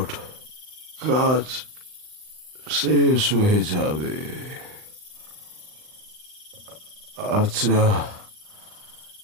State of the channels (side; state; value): left; late; 39 ms